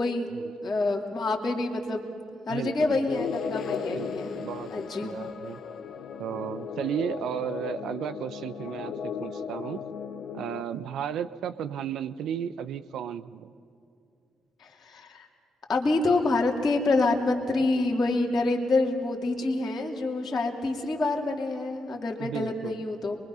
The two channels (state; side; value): normal; both; correlation 0.79